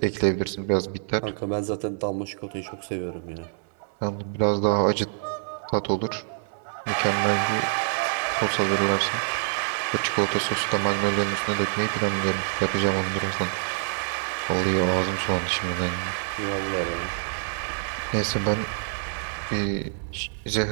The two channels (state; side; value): silent; left; 61 dB below the other